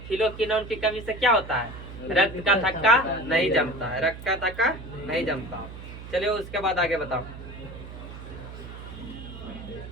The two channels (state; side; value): noise; right; hum, 12 dB below the sound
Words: फिलोकिनोन की कमी से क्या होता है? रक्त का थक्का नहीं जमता है। रक्त का थक्का नहीं जमता। चलिए उसके बाद आगे बताओ।